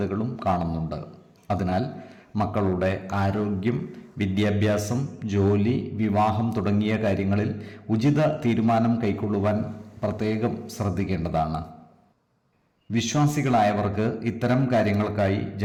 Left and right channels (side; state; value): both; identical; correlation 1.00